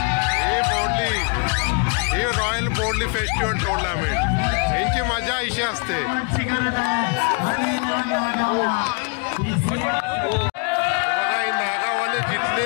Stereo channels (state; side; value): quieter; right; 36.3 dB